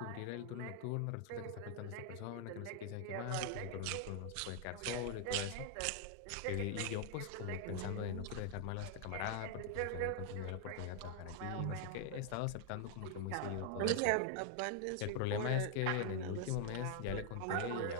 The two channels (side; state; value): both; different; correlation 0.00